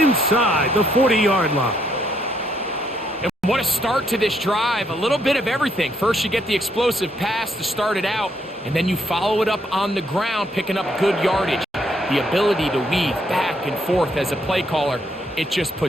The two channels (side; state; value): both; normal; correlation 0.73